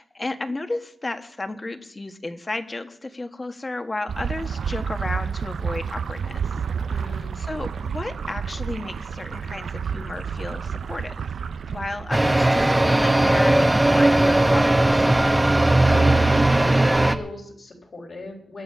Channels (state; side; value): normal; both; correlation 0.97